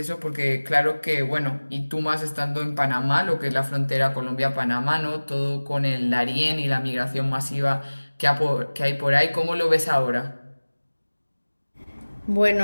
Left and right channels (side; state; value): both; inverted; correlation -1.00